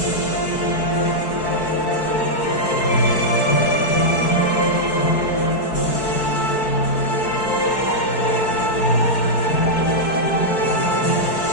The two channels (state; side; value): late; right; 4.6 ms